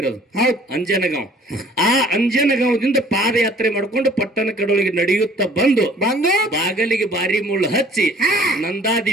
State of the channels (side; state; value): both; normal; correlation 0.54